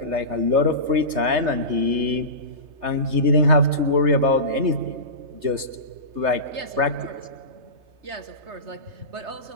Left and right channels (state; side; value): late; left; 3.3 ms